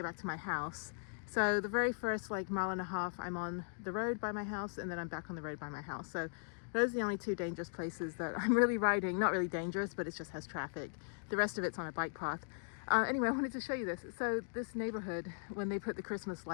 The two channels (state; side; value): silent; right; digital silence